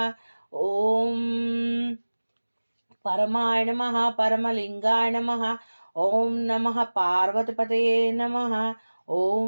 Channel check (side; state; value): both; inverted; correlation -1.00